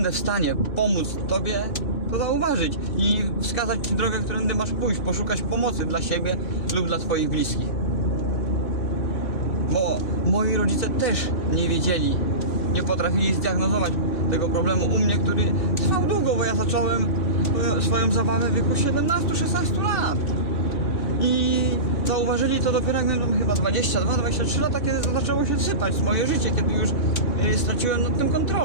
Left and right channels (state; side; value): late; right; 3.5 ms